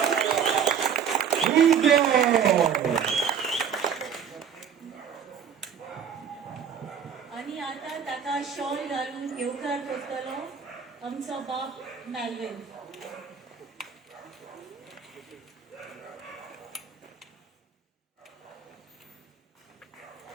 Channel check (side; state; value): left; quieter; 7.5 dB